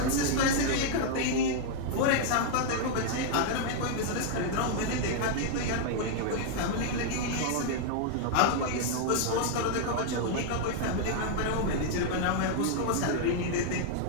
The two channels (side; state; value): both; different; correlation 0.00